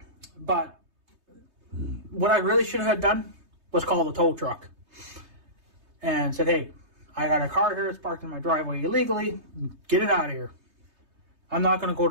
what I really should have done was call the tow truck and said, hey, I got a car here that's parked in my driveway illegally. Get it out of here. I'm not going to go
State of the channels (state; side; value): late; left; 3.2 ms